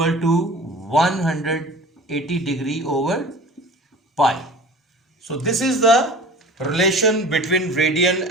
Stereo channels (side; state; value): both; normal; correlation 0.41